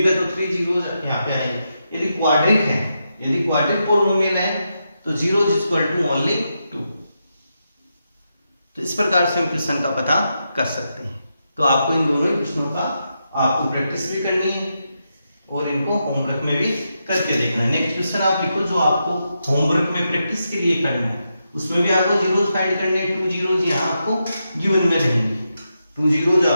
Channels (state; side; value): inverted; both; correlation -0.85